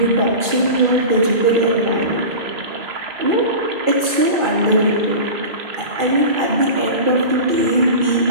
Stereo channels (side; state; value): left; late; 2.4 ms